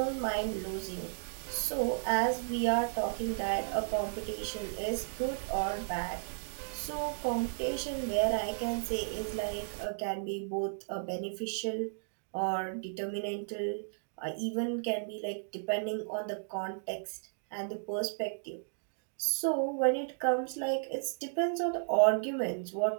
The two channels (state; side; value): silent; left; digital silence